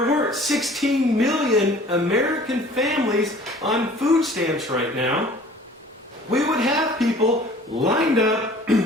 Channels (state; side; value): normal; both; correlation 0.49